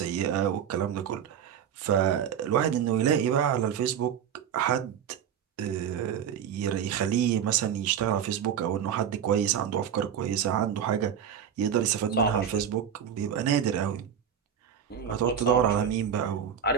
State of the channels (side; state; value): left; quieter; 8.5 dB